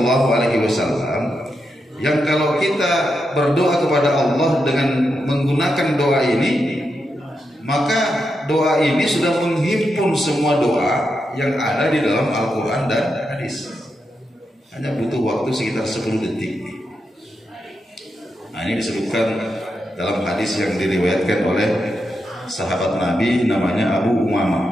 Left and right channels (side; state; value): both; normal; correlation 0.85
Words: Alaihi Wasallam, yang kalau kita berdoa kepada Allah dengan menggunakan doa ini, maka doa ini sudah menghimpun semua doa yang ada di dalam Al-Quran dan hadis. Hanya butuh waktu sekitar 10 detik. Nah, ini disebutkan dalam hadis yang diriwayatkan oleh sahabat Nabi namanya Abu